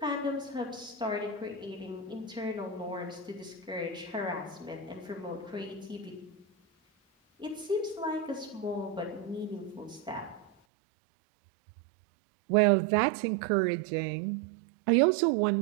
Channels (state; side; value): drops out; left; at 10.5 s